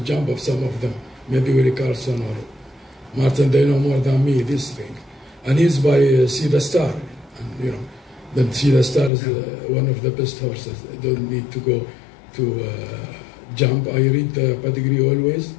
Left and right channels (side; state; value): right; drops out; at 9.1 s